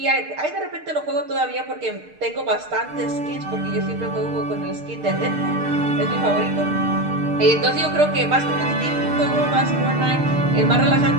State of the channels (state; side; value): late; left; 6.6 ms